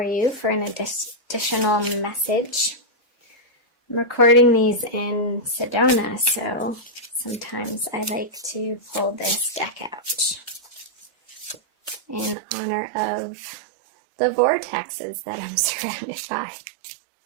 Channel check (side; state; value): left; drops out; at 12.4 s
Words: you for an additional message. I'm recording these in Sedona, so sometimes I like to pull this deck out in honor of the vortexes that I'm surrounded by.